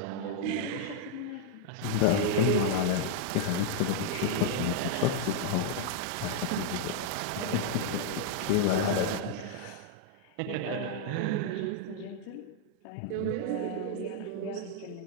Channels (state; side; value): different; both; correlation -0.01